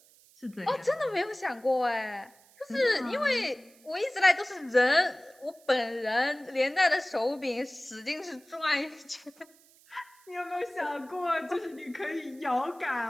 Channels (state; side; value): noise; right; hiss, 28 dB below the sound